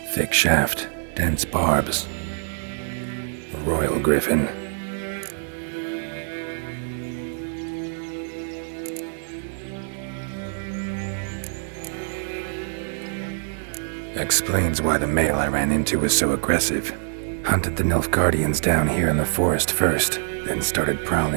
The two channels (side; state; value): left; silent; digital silence